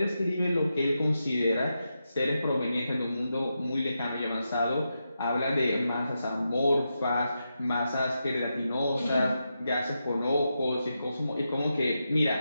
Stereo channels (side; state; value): both; inverted; correlation -0.87